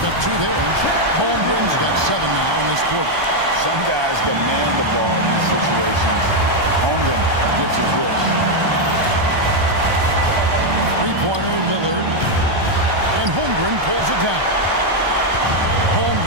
up 2 there. Holmgren's got 7 now in this quarter. Some guys demand the ball in these situations. Holmgren gets his wish. Three-pointer, Lillard. And Holmgren pulls it down.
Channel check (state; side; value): late; left; 1.2 ms